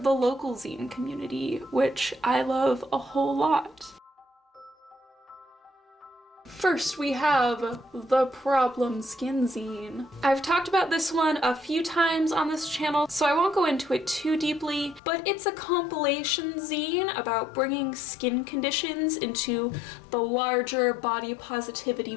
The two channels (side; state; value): right; drops out; at 15.0 s